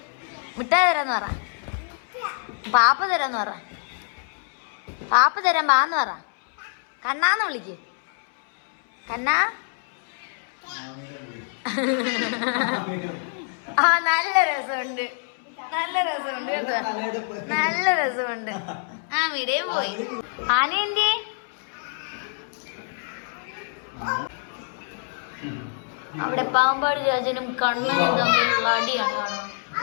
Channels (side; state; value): right; silent; 61 dB below the other